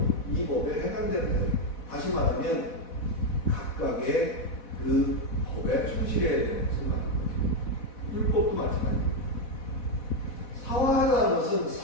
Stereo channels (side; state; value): right; late; 4.1 ms